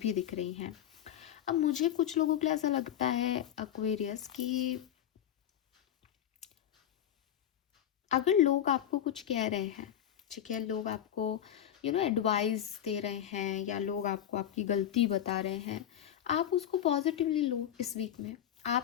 भी दिख रही हैं। अब मुझे कुछ लोगों के लिए ऐसा लगता है एक्वेरियस कि अगर लोग आपको कुछ कह रहे हैं, ठीक है, लोग आपको एडवाइस दे रहे हैं, या लोग आपको आपकी गलती बता रहे हैं, आप उसको पॉजिटिवली लो इस वीक में।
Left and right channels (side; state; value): right; quieter; 10.4 dB